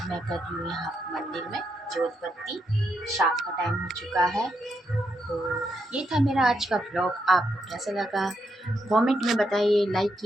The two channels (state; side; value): normal; both; correlation 0.81